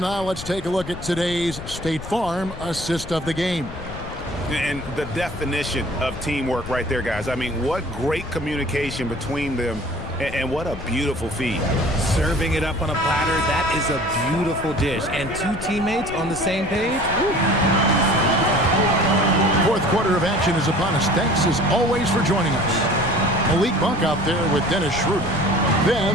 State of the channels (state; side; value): noise; left; rumble, 11 dB below the sound